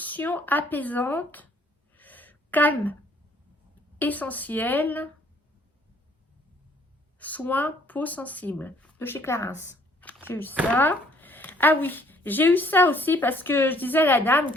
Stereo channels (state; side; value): normal; both; correlation 0.62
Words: apaisante. Calme. Essentiel. Soins peau sensible de chez Clarins. J'ai eu ça. Ah oui, j'ai eu ça aussi parce que je disais à la dame